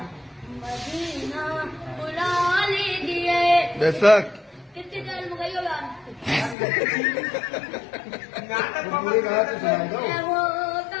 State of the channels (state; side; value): drops out; right; at 6.6 s